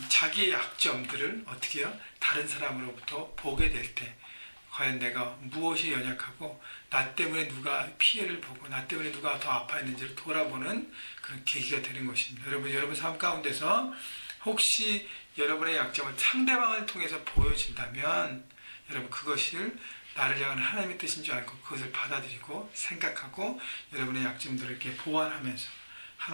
자기의 약점들을 어떻게 해요? 다른 사람으로부터 보게 될 때 과연 내가 무엇이 연약하고 나 때문에 누가 피해를 보고 나 때문에 누가 더 아파했는지를 돌아보는 그런 계기가 되는 것입니다. 여러분 삶 가운데서 혹시 여러분의 약점을 상대방을 통해서 보여진다면 여러분 그것을 나를 향한 하나님의 뜻인 줄 알고 그것을 받아들이고 생각하고 여러분의 약점들을 이렇게 보완하면서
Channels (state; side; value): inverted; both; correlation -1.00